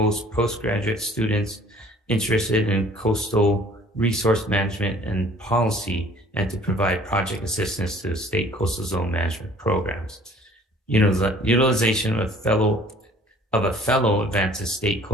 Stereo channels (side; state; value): both; normal; correlation 0.53